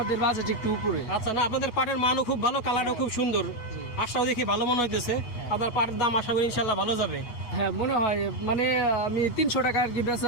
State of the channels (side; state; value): right; late; 8.3 ms